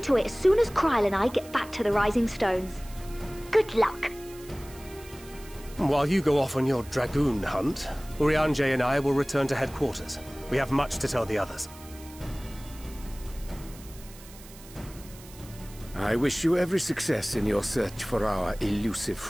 it as soon as Kryl and I get back to the Rising Stones. Good luck. While you go off on your dragoon hunt, Urianger and I will return to headquarters. We have much to tell the others. I wish you every success in your search for our elusive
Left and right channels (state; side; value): noise; right; hiss, 20 dB below the sound